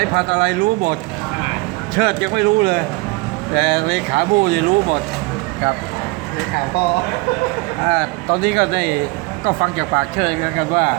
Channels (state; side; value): quieter; left; 25.2 dB